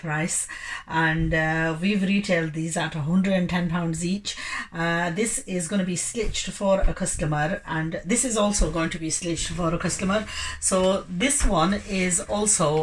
and we've retailed these at £110 each. This is going to be stitched for a customer, and this is also going to be stitched for a customer. So this one is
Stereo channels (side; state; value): both; identical; correlation 1.00